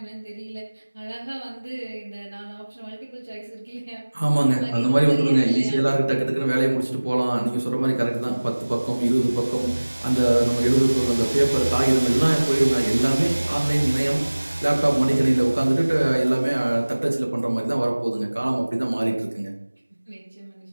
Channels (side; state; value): both; inverted; correlation -1.00